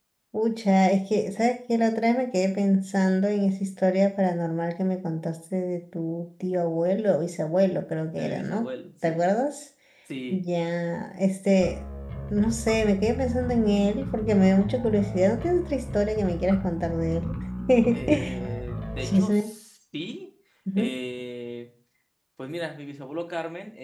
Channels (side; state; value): both; identical; correlation 1.00